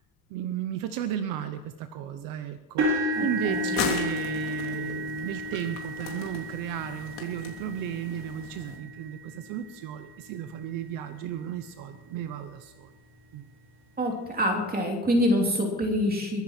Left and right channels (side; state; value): both; normal; correlation 0.23